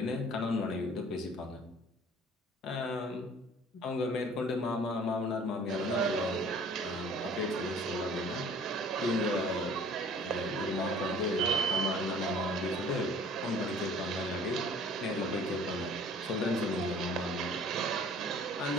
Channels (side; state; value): both; normal; correlation 0.50